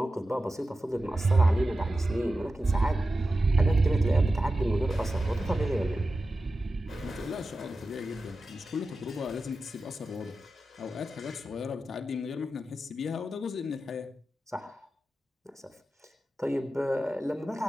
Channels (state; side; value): normal; both; correlation 0.93